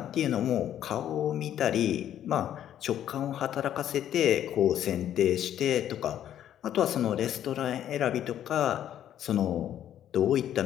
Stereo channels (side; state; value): right; quieter; 10.9 dB